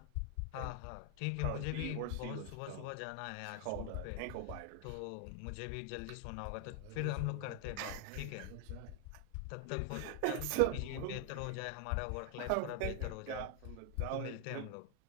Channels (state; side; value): different; both; correlation 0.00